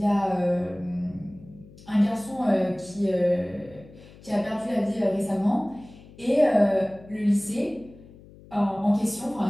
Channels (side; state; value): left; noise; hum, 22 dB below the sound